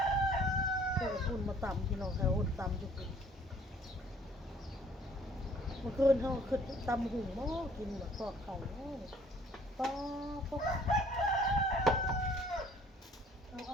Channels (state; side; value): normal; both; correlation 0.57